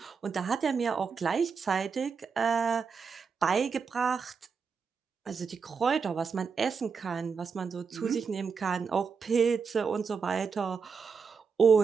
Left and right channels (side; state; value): left; quieter; 5.6 dB